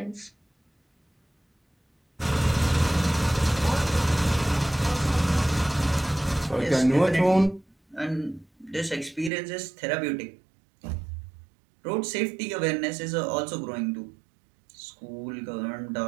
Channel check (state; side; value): drops out; left; at 9.3 s